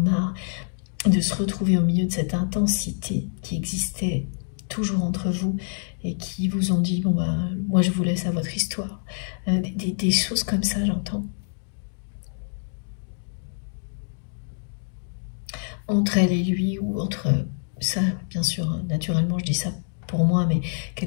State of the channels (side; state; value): right; silent; digital silence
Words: de se retrouver au milieu de cette intensité qui existait toujours entre vous et qui vous ont dit, bon bah, moi je vous laisse à votre histoire. Des choses comme ça, j'entends. Entre elle et lui, ou entre ça, bien sûr, naturellement je dis ça pour moi, mais